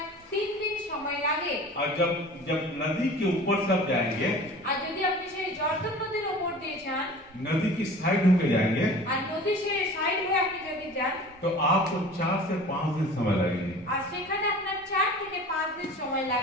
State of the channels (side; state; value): both; normal; correlation 0.42